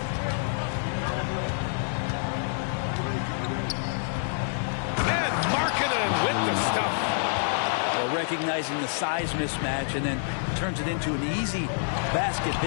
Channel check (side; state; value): right; silent; digital silence